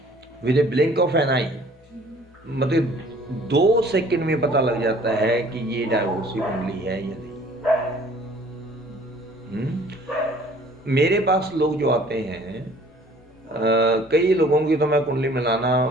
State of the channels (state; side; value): normal; both; correlation 0.54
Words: With a blink of an eye, मतलब 2 सेकंड में पता लग जाता है कि ये डाइवोर्स की कुंडली है या नहीं। मेरे पास लोग जो आते हैं, कई लोगों की तो मैं कुंडली मिलाना